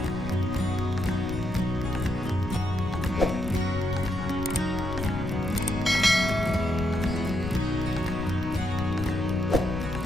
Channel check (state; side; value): noise; left; rumble, 8 dB below the sound